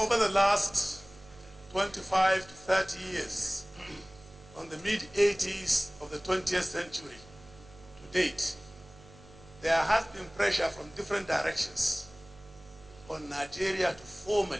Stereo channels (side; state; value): right; noise; hum, 22 dB below the sound